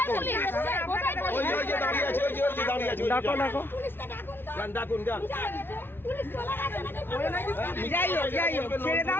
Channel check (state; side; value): late; right; 0.11 ms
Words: পুলিশ? ডাকো যান ডাকুন যান যাই হোক ছেড়ে